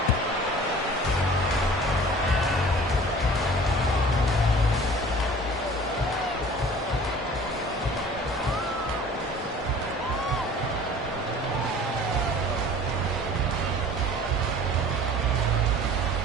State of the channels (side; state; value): both; normal; correlation 0.46